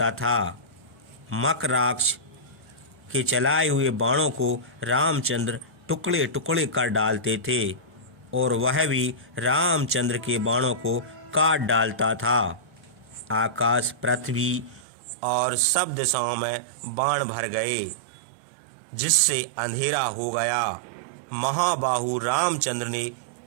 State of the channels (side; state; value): left; drops out; at 14.9 s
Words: था। मकराक्ष के चलाए हुए बाणों को रामचंद्र टुकड़े टुकड़े कर डालते थे और वह भी रामचंद्र के बाणों को काट डालता था। आकाश, पृथ्वी और सब दिशाओं में बाण भर गए, जिससे अंधेरा हो गया। महाबाहु रामचंद्र ने